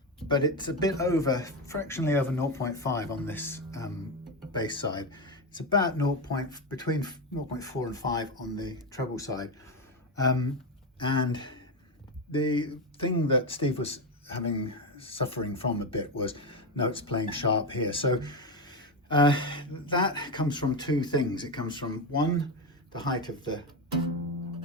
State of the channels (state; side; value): normal; both; correlation 0.12